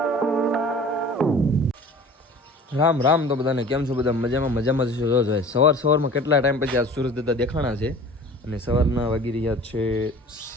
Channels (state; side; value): normal; both; correlation 0.44